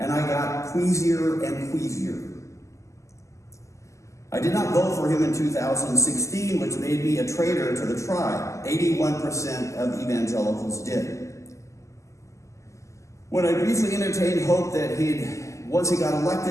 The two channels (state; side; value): late; right; 0.15 ms